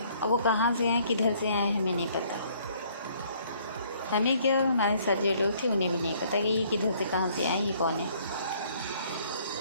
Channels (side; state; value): both; inverted; correlation -0.62